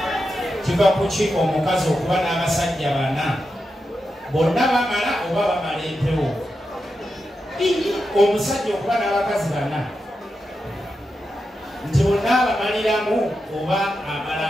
kiva ku ki omukazi okuba n'abasajja bana bonna bamala oba bamala empewo omusajja okuba n'abakazi bana nti bonna abamaliramu oba amala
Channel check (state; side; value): normal; both; correlation 0.88